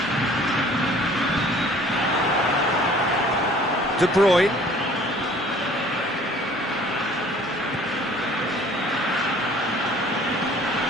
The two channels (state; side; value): normal; both; correlation 0.52